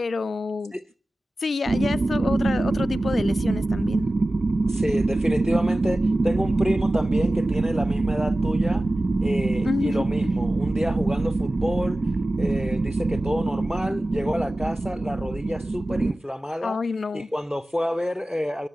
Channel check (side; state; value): both; normal; correlation 0.95